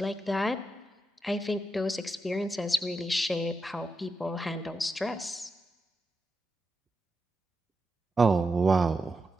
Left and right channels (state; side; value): normal; both; correlation 0.87